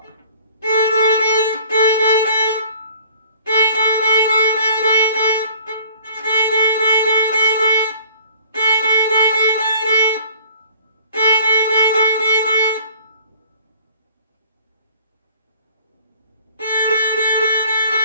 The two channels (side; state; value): both; inverted; correlation -0.53